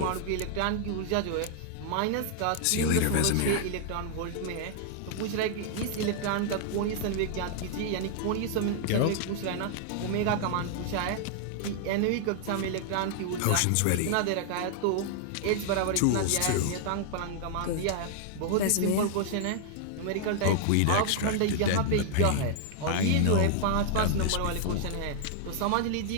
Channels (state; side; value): different; both; correlation -0.01